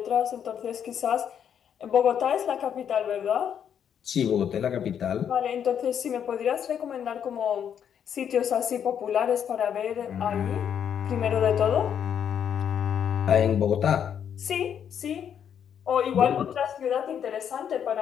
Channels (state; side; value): quieter; right; 8.6 dB